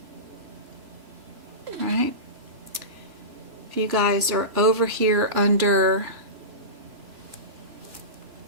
right? If you guys are over here under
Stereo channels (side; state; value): left; late; 3.0 ms